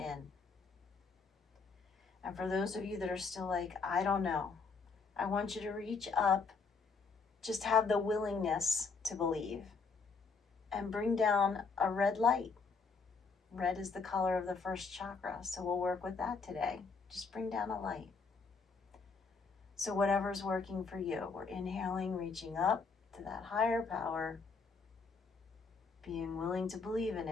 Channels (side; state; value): right; quieter; 4.7 dB